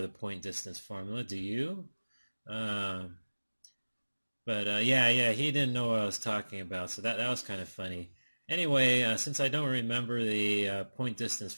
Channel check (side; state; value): both; inverted; correlation -1.00